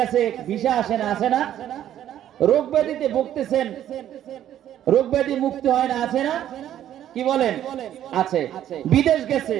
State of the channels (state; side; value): quieter; left; 11.4 dB